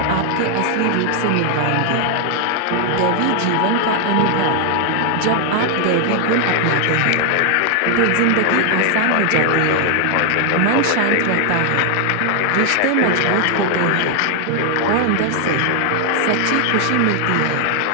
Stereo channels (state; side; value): different; both; correlation 0.00